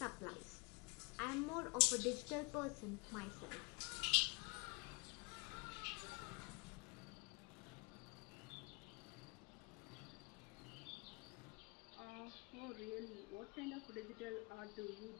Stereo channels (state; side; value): quieter; right; 30.0 dB